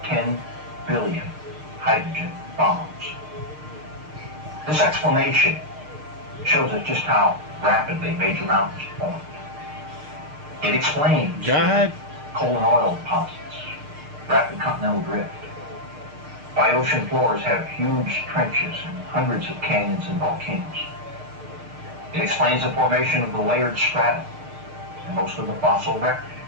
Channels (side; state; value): left; late; 6.6 ms